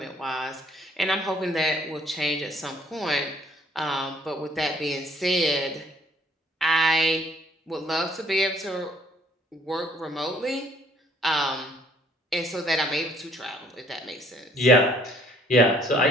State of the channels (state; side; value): normal; both; correlation 0.62